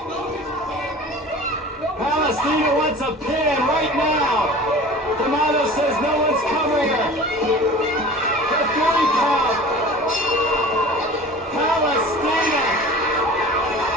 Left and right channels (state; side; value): normal; both; correlation 0.40